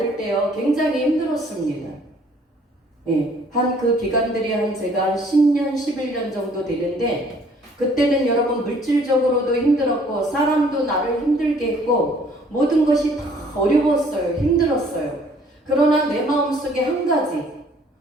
때요 굉장히 힘들었습니다. 예, 한 그 기간들이 제가 10년, 11년 정도 되는데 그때는 여러분 물질적으로도 힘들었고 사람도 나를 힘들게 했고 모든 것이 다 어려웠어요. 힘들었어요. 그러나 내 마음속에 한 가지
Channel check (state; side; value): normal; both; correlation 0.59